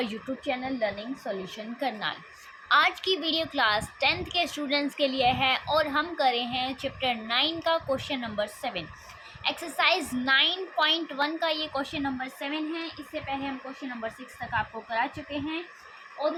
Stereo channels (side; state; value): both; identical; correlation 1.00